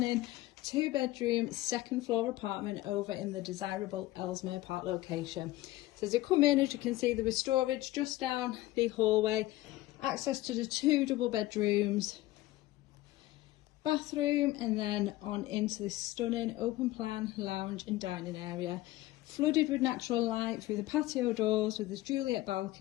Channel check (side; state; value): right; quieter; 17.1 dB